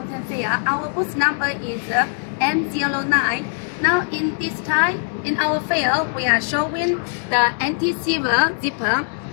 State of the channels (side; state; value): right; silent; digital silence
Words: Fair. Our booth number is M09. Now in this time, in our fair, we are showing the anti-silver zipper.